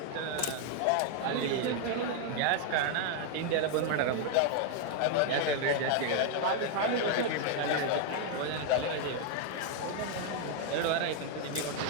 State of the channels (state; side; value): different; both; correlation 0.00